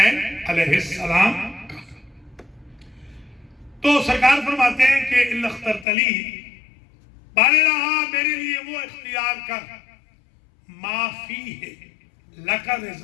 علیہ السلام کا۔ تو سرکار فرماتے ہیں کہ الا اخترت لی، بارے رہا میرے لیے وہ اختیار کر، ما فیہ لک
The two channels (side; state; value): right; drops out; at 5.9 s